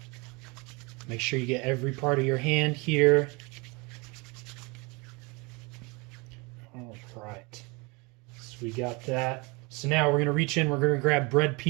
Make sure you get every part of your hand here. All right. So we got that. So now we're going to reach in. We're going to grab bread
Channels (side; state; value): left; quieter; 27.8 dB